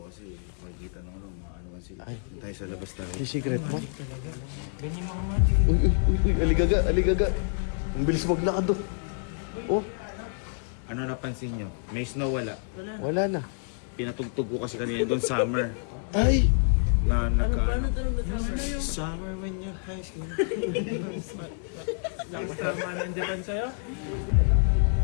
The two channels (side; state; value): right; silent; 60 dB below the other